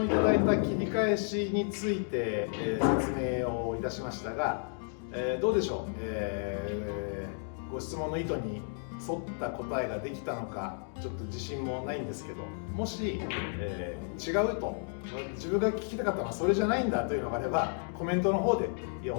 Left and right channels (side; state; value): right; silent; 56 dB below the other